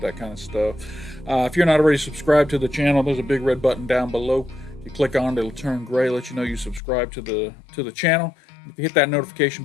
that kind of stuff. If you're not already subscribed to the channel, there's a big red button down below. If you click on it, it'll turn gray, let you know you subscribe to the channel. If you hit that notification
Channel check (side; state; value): right; drops out; at 6.8 s